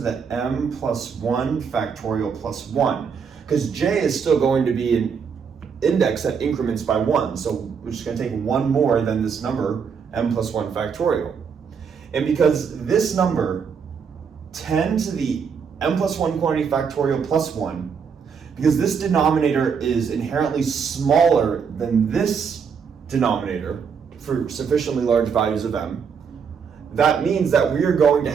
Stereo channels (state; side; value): quieter; left; 6.4 dB